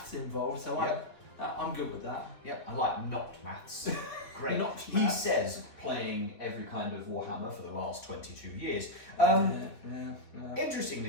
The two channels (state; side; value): late; right; 3.5 ms